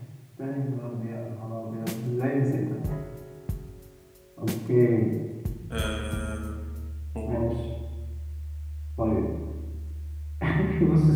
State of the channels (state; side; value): identical; both; correlation 1.00